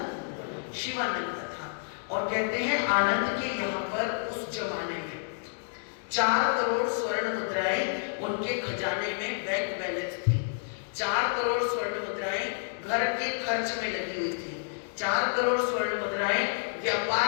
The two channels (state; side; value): silent; right; digital silence